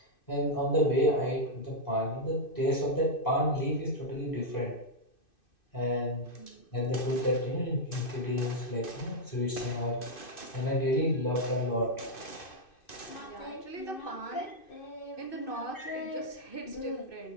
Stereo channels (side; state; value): right; late; 2.6 ms